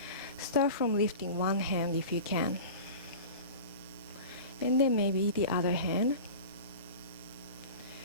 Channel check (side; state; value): both; inverted; correlation -0.35